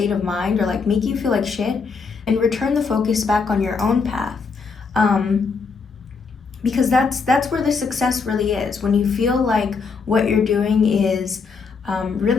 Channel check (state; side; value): quieter; right; 5.0 dB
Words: of mind, or like making you feel like shit, and return the focus back on your own path. Because that's where the success really is. When you feel like what you're doing is